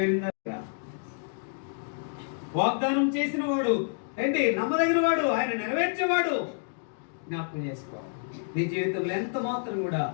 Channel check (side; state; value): right; silent; digital silence